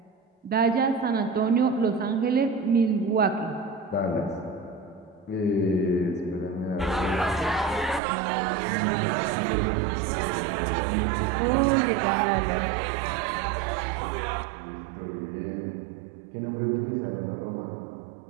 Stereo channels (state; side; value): drops out; left; at 8.0 s